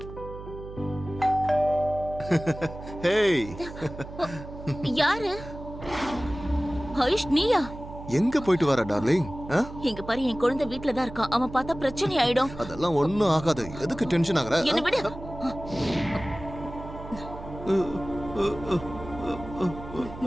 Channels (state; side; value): noise; right; hum, 13 dB below the sound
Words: ஹேய், யாரு? ஆயுஷ் நீயா? எங்க போயிட்டு வர டார்லிங்? இங்க பாரு, என் குழந்தை வீட்ல தான் இருக்கான். அவன் பார்த்தா பிரச்சனை ஆயிடும். அதெல்லாம் ஒண்ணும் ஆகாது. எதுக்கு டென்ஷன் ஆகுற? என்ன விடு.